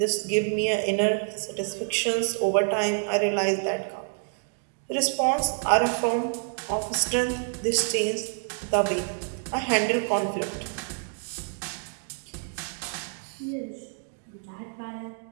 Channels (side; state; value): left; silent; 59 dB below the other